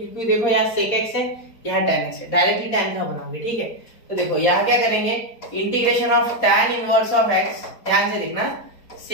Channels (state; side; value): late; right; 4.4 ms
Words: देखो यहाँ sec x है, यहाँ tan x है, डायरेक्टली tan का बनाओगे, ठीक है। तो देखो यहाँ क्या करेंगे, integration of tan inverse of x, ध्यान से देखना,